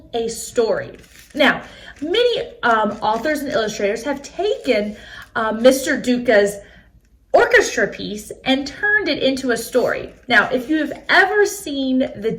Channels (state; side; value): identical; both; correlation 1.00